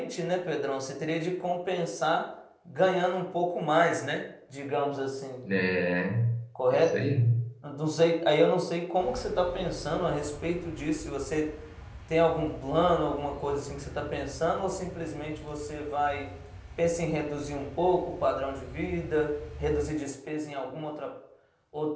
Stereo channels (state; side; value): identical; both; correlation 1.00